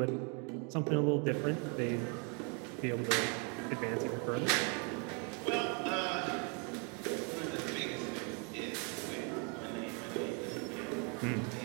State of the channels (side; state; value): left; quieter; 36.0 dB